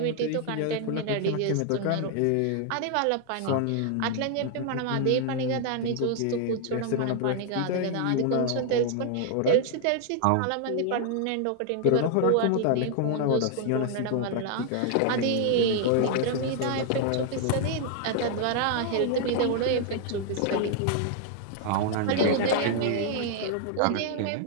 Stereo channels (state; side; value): different; both; correlation 0.00